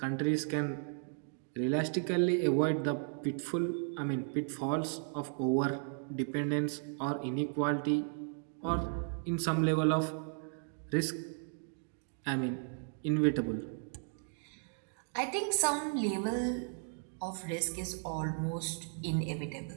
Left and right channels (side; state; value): left; silent; 54 dB below the other